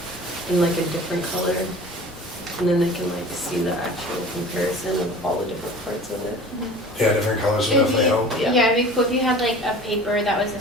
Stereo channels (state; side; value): normal; both; correlation 0.42